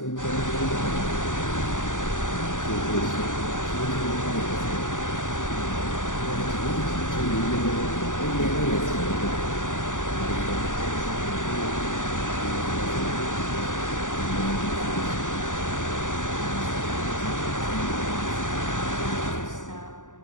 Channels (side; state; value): right; late; 0.87 ms